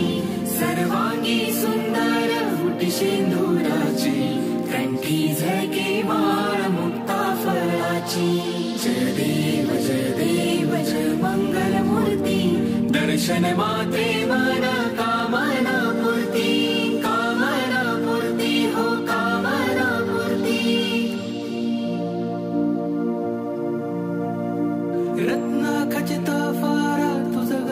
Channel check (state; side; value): identical; both; correlation 1.00